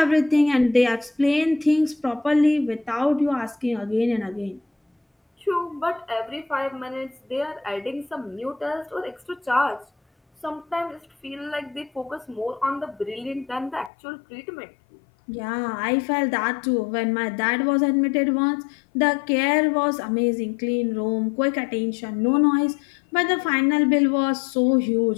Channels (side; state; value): right; drops out; at 13.9 s